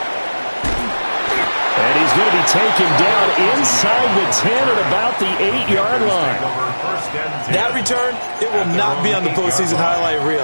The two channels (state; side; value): inverted; both; correlation -1.00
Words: And he's going to be taken down inside the 10 at about the 8-yard line. That return, it will not be on the postseason highlight